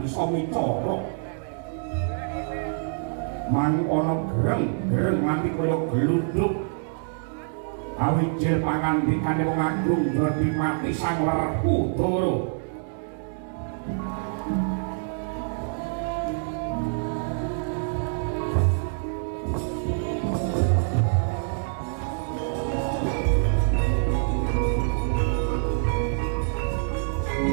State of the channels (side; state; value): left; silent; digital silence